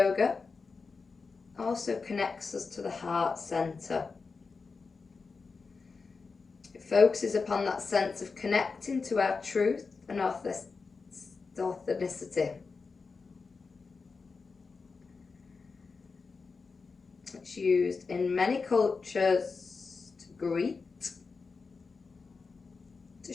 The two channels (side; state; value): right; quieter; 4.6 dB